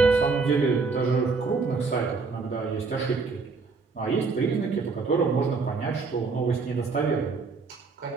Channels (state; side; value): quieter; left; 4.5 dB